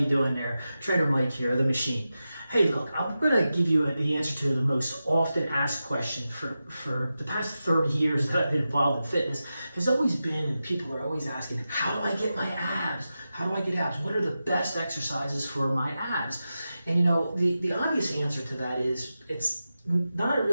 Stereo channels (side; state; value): both; inverted; correlation -0.92